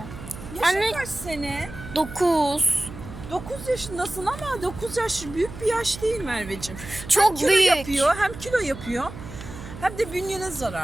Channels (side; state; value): right; noise; hum, 13 dB below the sound